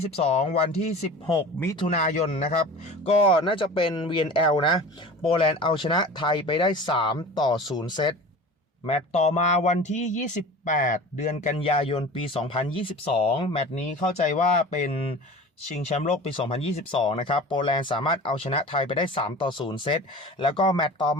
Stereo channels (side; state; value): both; normal; correlation 0.37